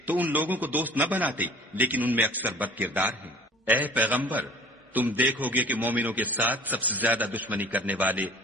تو ان لوگوں کو دوست نہ بناتے، لیکن ان میں اکثر بد کردار ہیں۔ اے پیغمبر، تم دیکھو گے کہ مومنوں کے ساتھ سب سے زیادہ دشمنی کرنے والے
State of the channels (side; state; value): both; normal; correlation 0.47